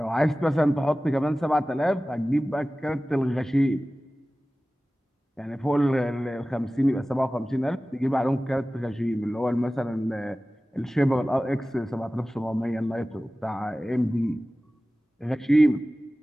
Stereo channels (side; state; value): both; normal; correlation 0.97